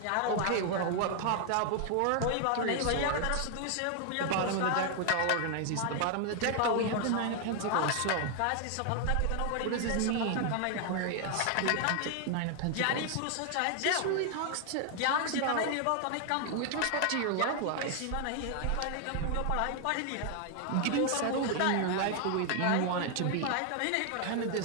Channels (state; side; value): different; both; correlation 0.00